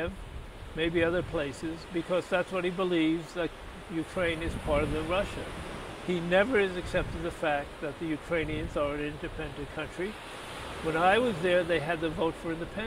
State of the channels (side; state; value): both; identical; correlation 1.00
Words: maybe other places, because that's what he believes, that Ukraine is part of the Russia. He never has accepted the fact that the Ukrainians are an independent country. When I was there, they had the vote for